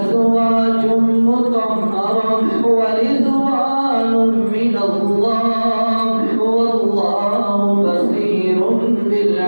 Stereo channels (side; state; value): both; inverted; correlation -1.00